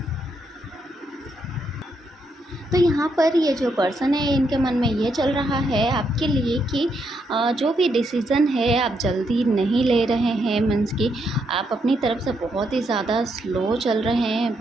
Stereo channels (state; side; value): normal; both; correlation 0.78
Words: तो यहाँ पर ये जो पर्सन है, इनके मन में ये चल रहा है आपके लिए कि जो भी डिसीज़न है आप जल्दी नहीं ले रहे हैं। मीन्स कि आप अपनी तरफ से बहुत ही ज़्यादा स्लो चल रहे हैं,